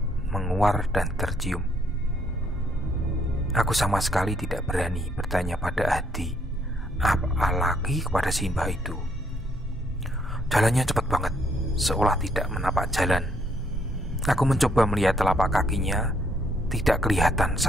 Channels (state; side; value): normal; both; correlation 0.70